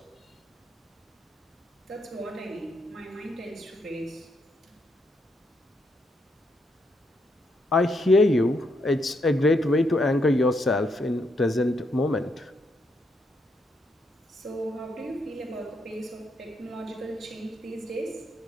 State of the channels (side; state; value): both; normal; correlation 0.77